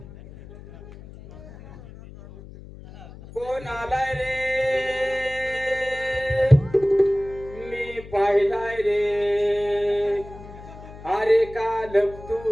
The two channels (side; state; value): left; noise; hum, 17 dB below the sound